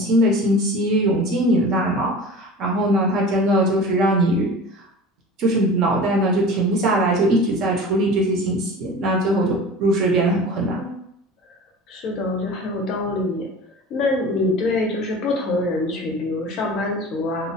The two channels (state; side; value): normal; both; correlation 0.38